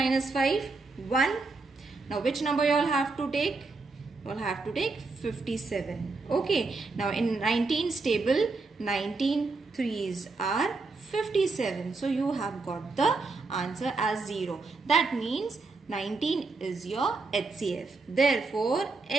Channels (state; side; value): quieter; left; 3.8 dB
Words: 5, 1. Now which number you all have to take? You all have to take 57. Okay, now in 19's table, 19 threes are 57. So you have got the answer as 0. That means 19 is your HCF. Therefore,